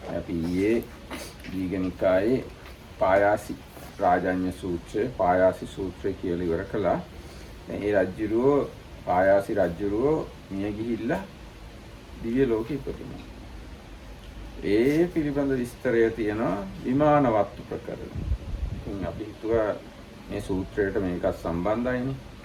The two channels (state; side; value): identical; both; correlation 1.00